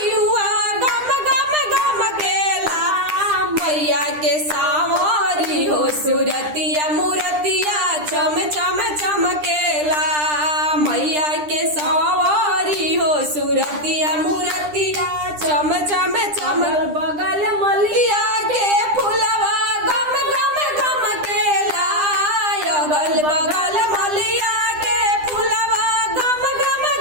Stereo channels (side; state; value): left; late; 9.9 ms